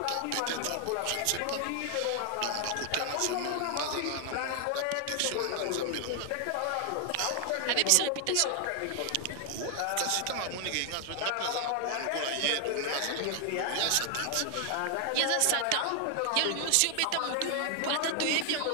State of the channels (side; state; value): both; different; correlation 0.00